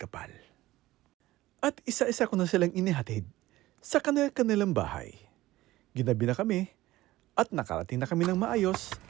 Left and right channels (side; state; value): left; quieter; 17.0 dB